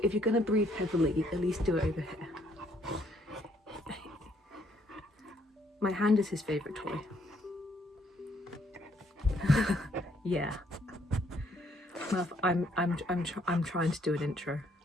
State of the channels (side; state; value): both; normal; correlation 0.68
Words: if you're going to breathe heavily, at least do it over here. My hand is his favourite toy. Yeah. Murph, I'm trying to do an intro.